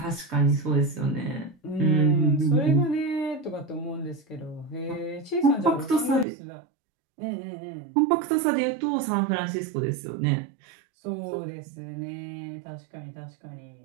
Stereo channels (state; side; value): drops out; left; at 6.2 s